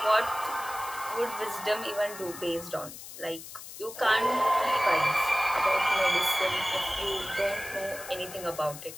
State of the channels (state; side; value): noise; left; hiss, 13 dB below the sound